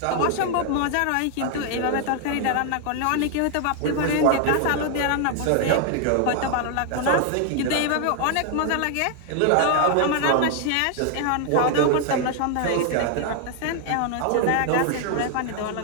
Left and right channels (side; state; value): both; different; correlation 0.00